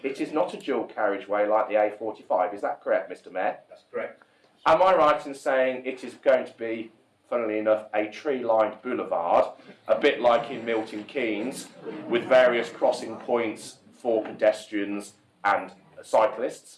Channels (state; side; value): identical; both; correlation 1.00